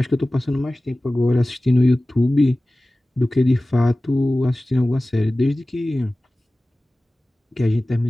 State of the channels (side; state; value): both; normal; correlation 0.97